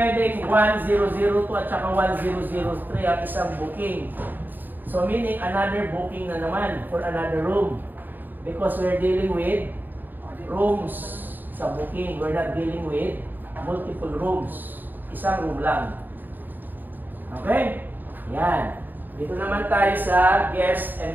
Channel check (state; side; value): late; left; 0.090 ms